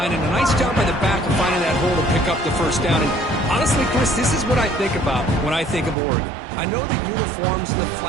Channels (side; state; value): left; drops out; at 6.0 s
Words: and a nice job by the back of finding that hole to pick up the 1st down. And honestly, Chris, this is what I think about when I think of Oregon. I know the uniforms and the